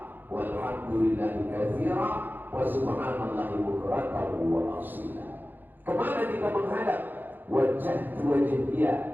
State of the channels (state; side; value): late; left; 0.089 ms